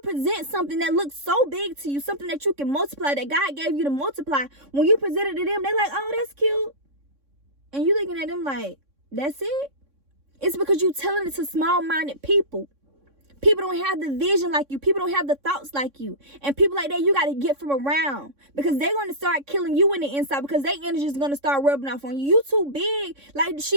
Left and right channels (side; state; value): left; late; 3.6 ms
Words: something that looks so big to you, something that you can multiply, that God gave you to multiply, when you present it to them, they're like, oh, that's cute. And you looking at them like, that's it? It's because you're telling it to small-minded people. People don't have the vision like you. People don't have the thoughts like you. And people like that, you got to get from around, because they're going to start killing you in the inside, because their energy is going to start rubbing off on you. You too big. Like